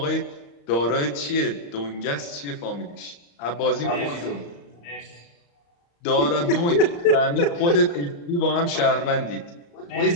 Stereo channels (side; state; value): right; late; 35 ms